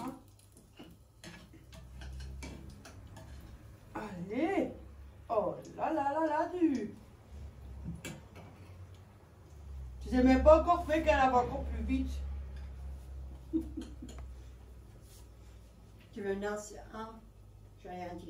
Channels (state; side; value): identical; both; correlation 1.00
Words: Allez. Oh là là là là, du. Tu sais même pas encore fait qu'elle va encore plus vite. Tu veux une ancienne? Hein? J'ai rien